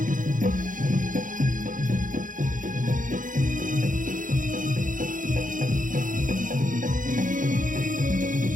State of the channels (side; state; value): left; late; 0.38 ms